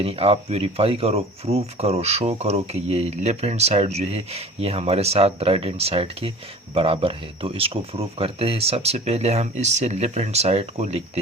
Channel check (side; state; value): both; normal; correlation 0.43